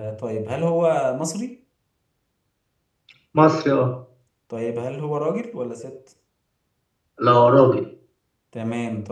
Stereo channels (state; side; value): identical; both; correlation 1.00